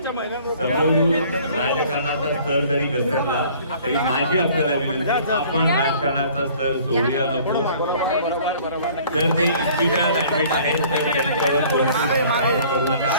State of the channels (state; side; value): inverted; both; correlation -0.53